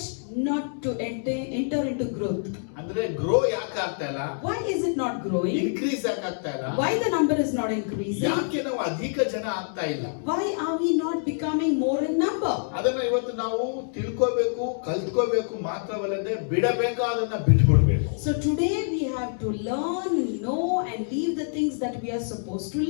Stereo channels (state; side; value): silent; right; digital silence